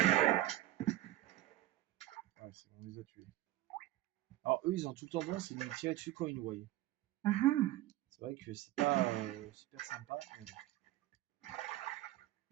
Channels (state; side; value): quieter; left; 15.5 dB